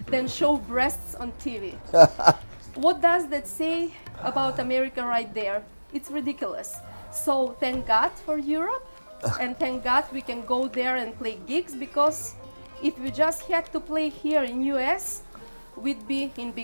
than show breasts on TV. What does that say about America right there? It's ridiculous. So thank God for Europe, and thank God we can go there and play gigs, because if we just had to play here in US, we'd be in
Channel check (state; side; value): inverted; both; correlation -1.00